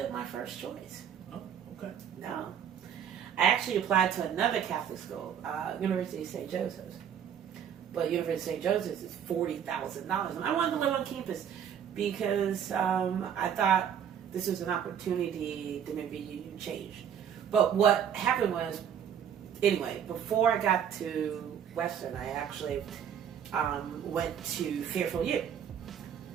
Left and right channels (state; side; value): quieter; left; 8.7 dB